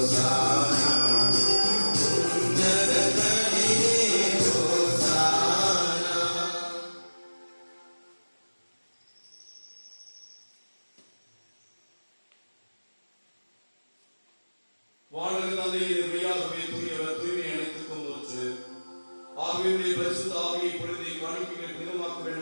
உன்னதங்களிலே ஓசானா. வானக தந்தையே, மெய்யாகவே தூயவர், தூய்மை அனைத்துக்கும் ஊற்று. ஆவியுடைய பரிசுத்த ஆவியை பொழுதை காணிக்கைகளை புனிதமாக்க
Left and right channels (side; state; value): both; inverted; correlation -1.00